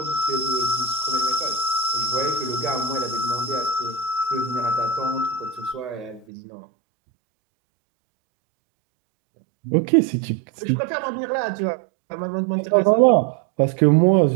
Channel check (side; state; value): left; drops out; at 6.2 s